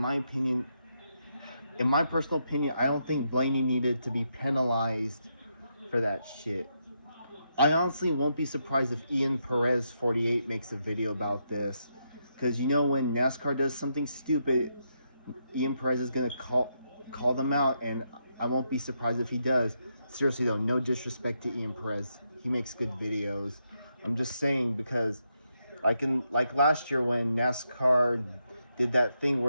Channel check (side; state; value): both; inverted; correlation -0.81